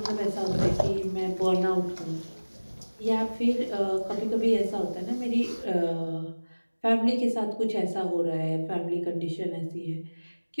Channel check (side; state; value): both; inverted; correlation -1.00